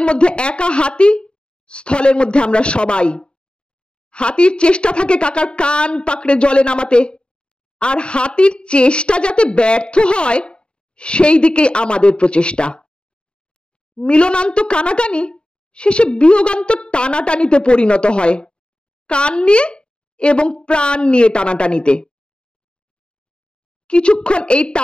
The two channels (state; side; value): late; right; 0.051 ms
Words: মধ্যে একা হাতি, স্থলের মধ্যে আমরা সবাই। হাতির চেষ্টা থাকে কাকার কান পাকড়ে জলে নামাতে, আর হাতির চেষ্টা যাতে ব্যর্থ হয় সেই দিকেই আমাদের প্রচেষ্টা। মিলনান্ত কানাকানি শেষে বিয়োগান্ত টানাটানিতে পরিণত হয়, কান নিয়ে এবং প্রাণ নিয়ে টানাটানিতে। কিছুক্ষণ এই